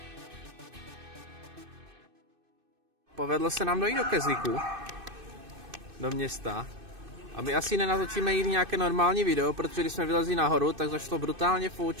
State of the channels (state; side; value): late; left; 2.6 ms